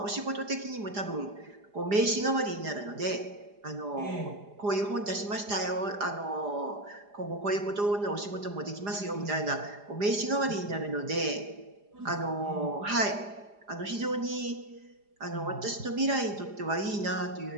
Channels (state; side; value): late; left; 4.9 ms